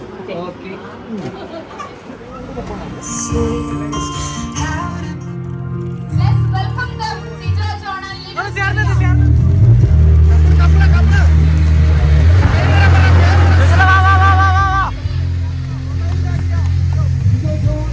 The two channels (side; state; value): both; identical; correlation 1.00